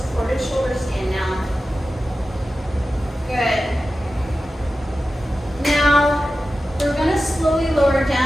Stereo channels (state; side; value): normal; both; correlation 0.94